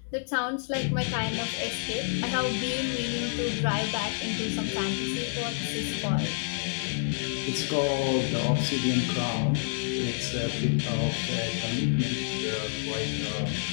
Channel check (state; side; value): silent; right; digital silence